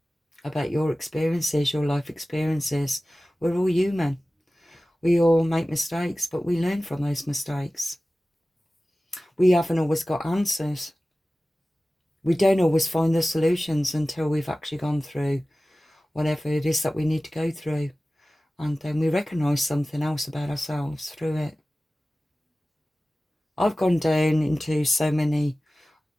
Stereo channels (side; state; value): both; normal; correlation 0.97